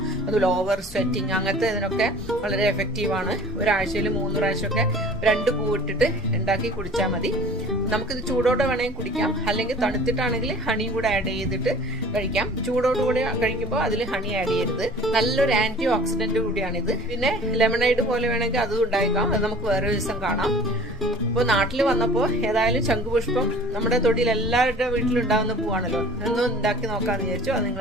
അതുപോലെ ഓവർ സ്വെറ്റിങ്, അങ്ങനത്തെ ഇതിനൊക്കെ വളരെ എഫക്റ്റീവ് ആണ്. ഒരാഴ്ചയിൽ 3 പ്രാവശ്യമൊക്കെ 2 പൂ ഇട്ടിട്ട് ഉണ്ടാക്കി കുടിച്ചാൽ മതി. നമുക്കിത് ചൂടോടെ വേണമെങ്കിൽ കുടിക്കാം, അല്ലെങ്കിൽ തണുത്തിട്ടാണെങ്കിൽ ഹണിയും കൂടെ ആഡ് ചെയ്തിട്ട് കഴിക്കാം. ചൂടോടുകൂടി കഴിക്കുമ്പോൾ അതിൽ ഹണി ആഡ് ചെയ്യരുത്. നല്ലൊരു ആന്റി ഓക്സിഡന്റ് കൂടിയാണിത്. പിന്നെ ലെമണൈഡ് പോലെ വേണമെങ്കിൽ അതും ഉണ്ടാക്കാം. അത് നമുക്ക് വേറെ ദിവസം കാണാം. അപ്പോൾ നാട്ടിൽ വന്നപ്പോൾ ഏതായാലും ശംഖുപുഷ്പം നമ്മുടെ തൊടിയിൽ എല്ലാവരുടെ വീട്ടിലുണ്ടാകുന്ന പൂവാണല്ലോ, ഒന്നും ഉണ്ടാക്കി നോക്കാമെന്ന് വിചാരിച്ചു. അത്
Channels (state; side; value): normal; both; correlation 0.45